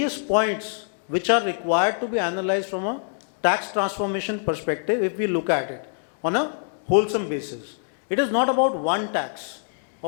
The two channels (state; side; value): silent; right; digital silence